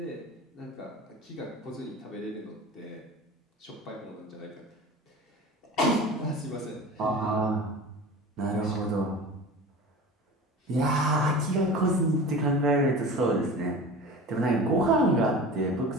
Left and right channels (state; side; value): normal; both; correlation 0.35